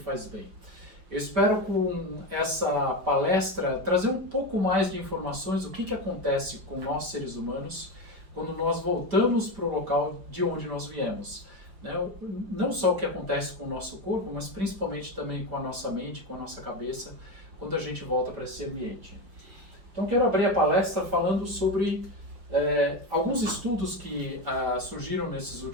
bem. Eu espero com essa palestra trazer um pouco mais de informações do que acontece com nós seres humanos quando nós voltamos para o local de onde nós viemos. Né? Não só o que acontece com o nosso corpo, mas principalmente também com a nossa mente, com a nossa cabeça, quando a gente volta para esse ambiente. Então, quero abrir a palestra falando sobre alguns estudos que surgiram nesses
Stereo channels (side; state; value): left; late; 5.1 ms